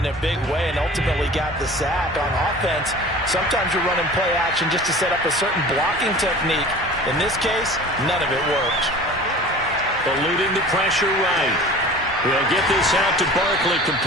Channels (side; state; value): both; normal; correlation 0.41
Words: a big way and ultimately got the sack. On offense, sometimes you're running play action just to set up a certain blocking technique. In this case, none of it worked. Eluding the pressure right. They'll get this out to Barkley